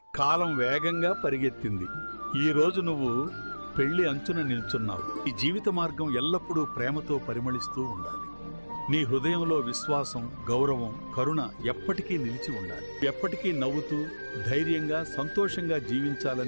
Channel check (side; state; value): both; inverted; correlation -1.00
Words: కాలం వేగంగా పరిగెత్తింది. ఈ రోజు నువ్వు పెళ్లి అంచున నిల్చున్నావు. ఈ జీవిత మార్గం ఎల్లప్పుడూ ప్రేమతో పరిమళిస్తూ ఉండాలి. నీ హృదయంలో విశ్వాసం, గౌరవం, కరుణ ఎప్పటికీ నిలిచి ఉండాలి. ఎప్పటికీ నవ్వుతూ ధైర్యంగా సంతోషంగా